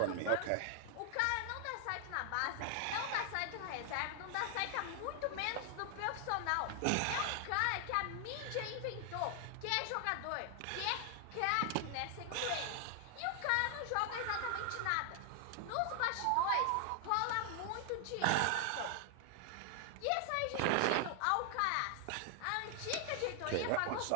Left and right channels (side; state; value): both; different; correlation 0.00